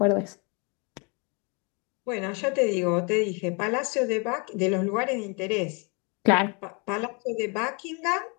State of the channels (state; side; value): quieter; right; 33.0 dB